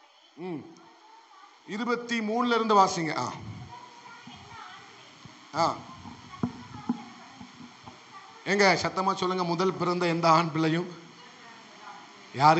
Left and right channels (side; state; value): both; identical; correlation 1.00